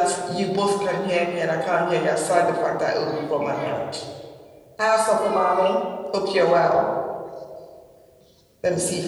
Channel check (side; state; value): both; identical; correlation 1.00